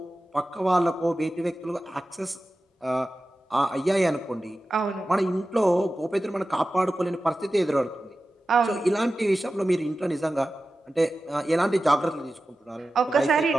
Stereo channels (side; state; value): both; normal; correlation 0.94